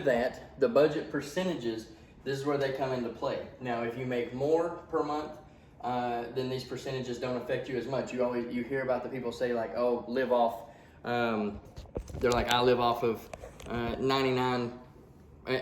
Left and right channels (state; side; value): identical; both; correlation 1.00